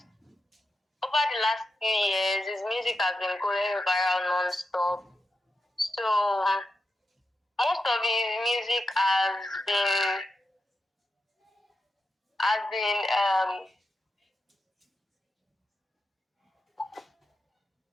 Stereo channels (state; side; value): normal; both; correlation 0.89